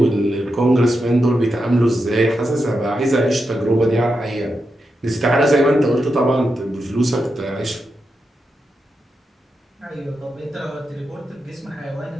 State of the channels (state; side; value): normal; both; correlation 0.87